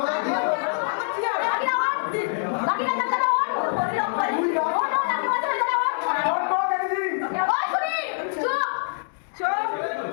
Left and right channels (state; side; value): silent; right; digital silence